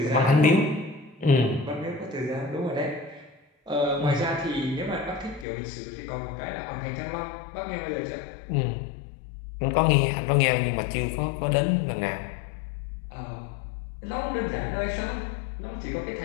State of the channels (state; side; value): drops out; right; at 5.5 s